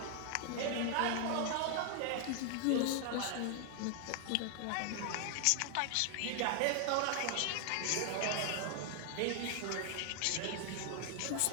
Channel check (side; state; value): both; different; correlation 0.00